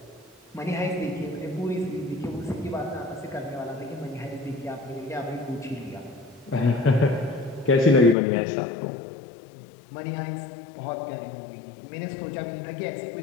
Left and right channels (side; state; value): right; drops out; at 8.2 s